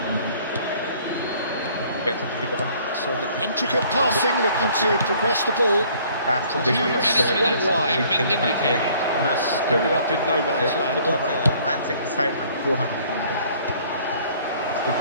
So the intricate passing, looking to progress the ball. One wide. Ended up in no man's land.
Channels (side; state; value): both; inverted; correlation -0.57